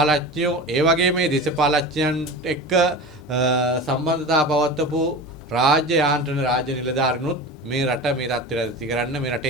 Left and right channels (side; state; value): both; normal; correlation 0.31